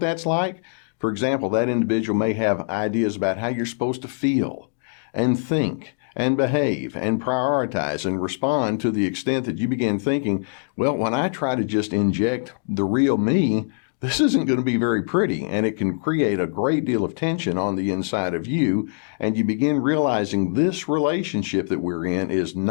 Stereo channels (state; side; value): silent; right; digital silence